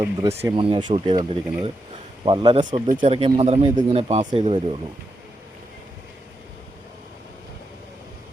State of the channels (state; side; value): normal; both; correlation 0.85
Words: ദൃശ്യമാണ് ഞാൻ ഷൂട്ട് ചെയ്തുകൊണ്ടിരിക്കുന്നത്. വളരെ ശ്രദ്ധിച്ചിറക്കിയാൽ മാത്രമേ ഇതിങ്ങനെ പാസ് ചെയ്ത് വരുള്ളൂ.